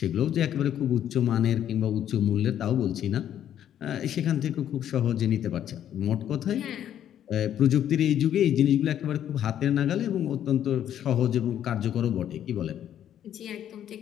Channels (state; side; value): quieter; right; 10.5 dB